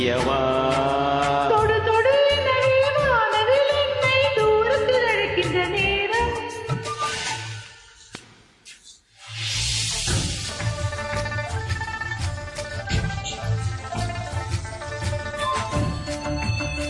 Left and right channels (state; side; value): identical; both; correlation 1.00